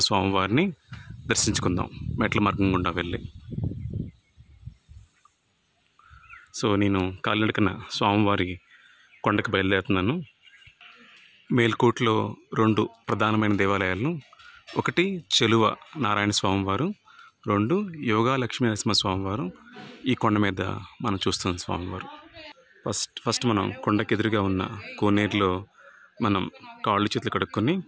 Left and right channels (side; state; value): both; identical; correlation 1.00